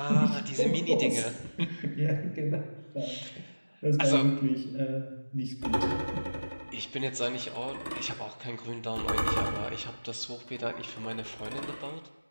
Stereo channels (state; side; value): inverted; both; correlation -1.00